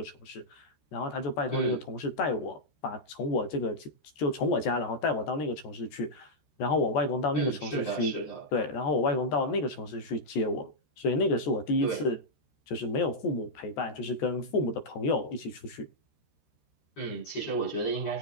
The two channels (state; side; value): late; right; 13 ms